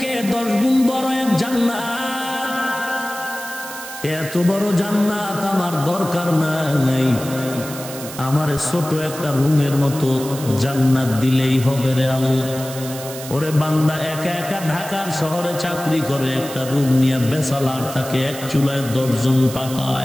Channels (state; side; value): noise; right; hiss, 12 dB below the sound